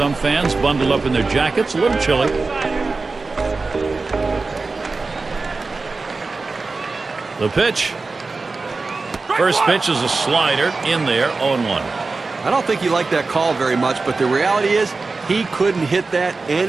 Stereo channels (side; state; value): left; quieter; 3.9 dB